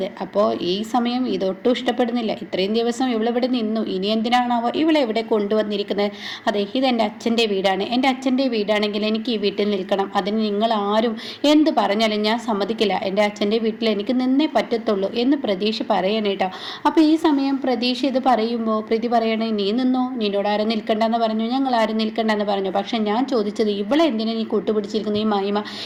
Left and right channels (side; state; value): both; identical; correlation 1.00